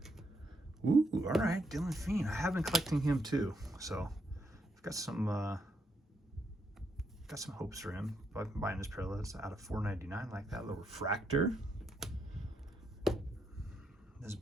Ooh, all right, Dylan Fiend. I have been collecting him too, so I've got some hopes for him. But I'm buying this parallels out of $4.99, like that little refractor. This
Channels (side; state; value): both; normal; correlation 0.78